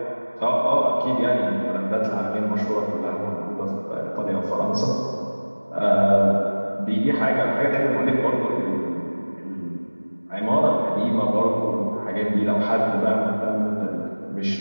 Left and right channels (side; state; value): both; inverted; correlation -1.00